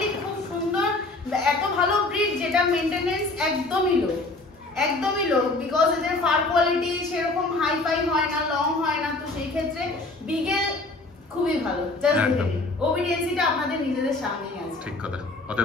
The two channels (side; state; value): right; quieter; 3.1 dB